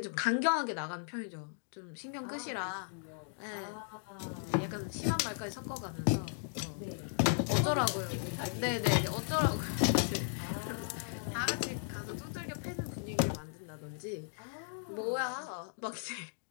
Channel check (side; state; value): right; silent; digital silence